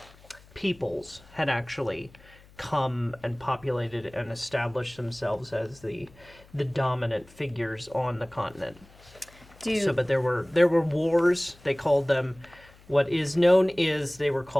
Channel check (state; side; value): noise; left; hum, 25 dB below the sound